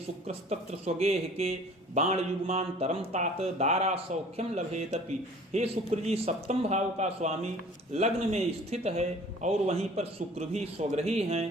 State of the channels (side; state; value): both; normal; correlation 0.49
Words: स्वगेह के बाण युग्मांतरम तात दारा सौख्यम लभेतपि। हे शुक्र जी, सप्तम भाव का स्वामी लग्न में स्थित है और वहीं पर शुक्र भी स्वग्रही हैं।